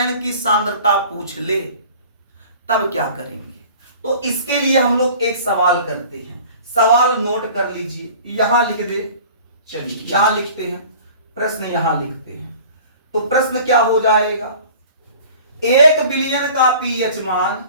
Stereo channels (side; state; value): both; inverted; correlation -0.45